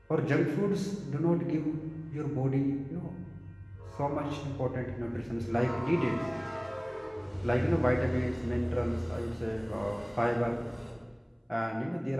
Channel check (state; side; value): identical; both; correlation 1.00